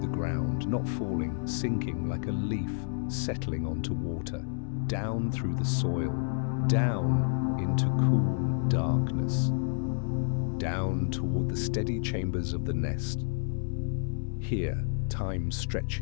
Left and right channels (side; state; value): right; silent; digital silence